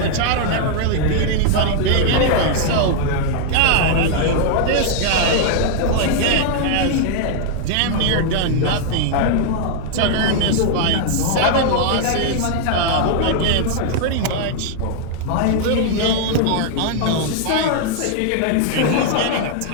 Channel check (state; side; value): different; both; correlation 0.00